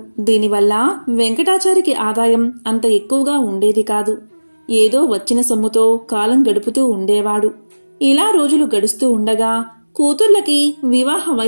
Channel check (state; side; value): inverted; both; correlation -1.00